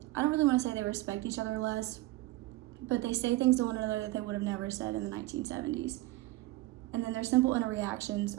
I don't really want to say they respect each other less, but they say things to one another that they would have never said in the 1970s. And then their simple interactions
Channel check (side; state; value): left; quieter; 18.5 dB